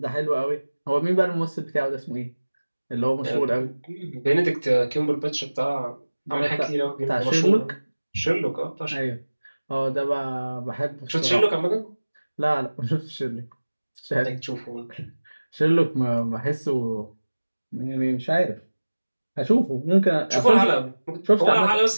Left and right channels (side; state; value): both; inverted; correlation -1.00